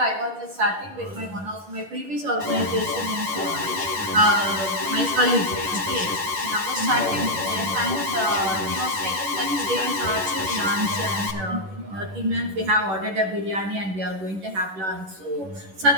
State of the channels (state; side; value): late; left; 10 ms